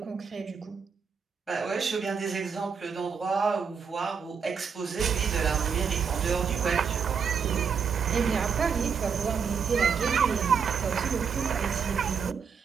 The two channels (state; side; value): quieter; left; 6.3 dB